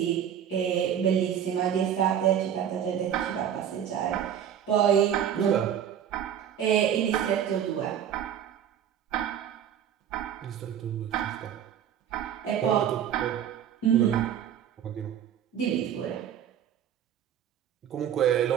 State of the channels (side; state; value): left; quieter; 9.4 dB